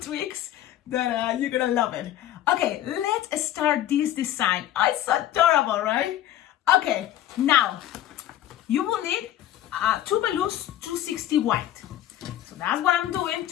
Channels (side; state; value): right; quieter; 12.7 dB